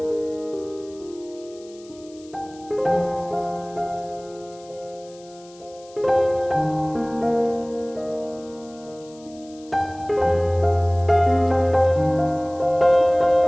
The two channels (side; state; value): left; noise; hiss, 25 dB below the sound